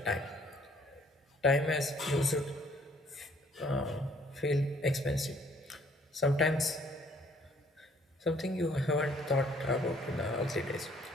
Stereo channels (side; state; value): both; normal; correlation 0.62